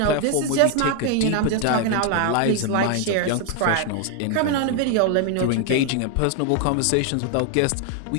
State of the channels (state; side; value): different; both; correlation 0.01